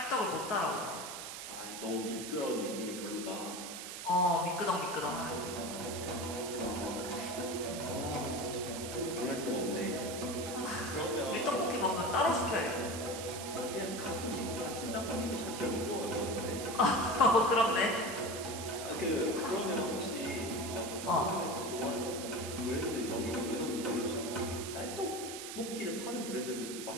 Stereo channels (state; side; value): noise; right; hiss, 8 dB below the sound